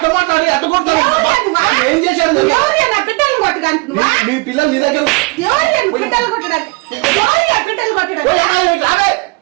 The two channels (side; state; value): left; quieter; 27.2 dB